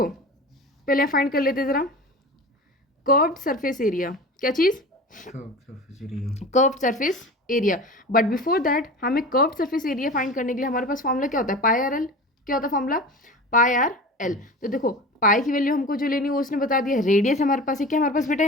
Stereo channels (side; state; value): both; normal; correlation 0.34